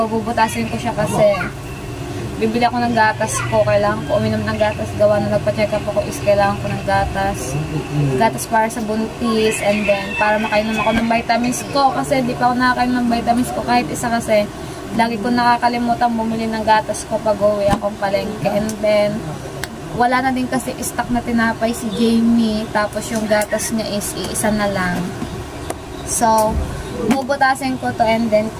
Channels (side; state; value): both; identical; correlation 1.00